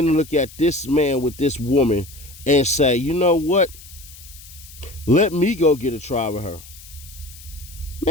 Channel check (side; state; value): left; noise; hiss, 19 dB below the sound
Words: look at this man with this woman and say, you know what? Let me go get a try with her.